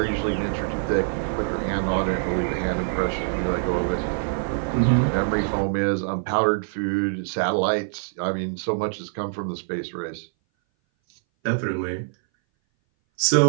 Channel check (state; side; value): silent; left; 59 dB below the other